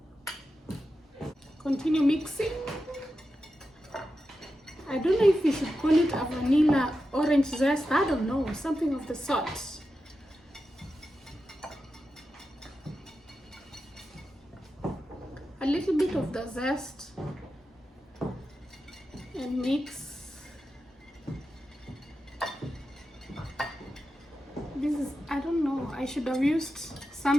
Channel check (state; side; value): normal; both; correlation 0.90